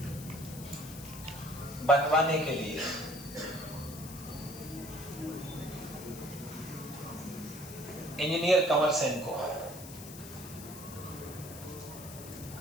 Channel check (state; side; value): noise; left; hiss, 14 dB below the sound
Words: बनवाने के लिए इंजीनियर कंवर सेन को